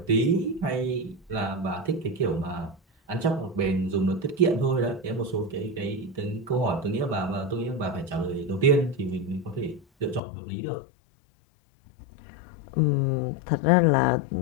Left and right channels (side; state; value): right; drops out; at 10.2 s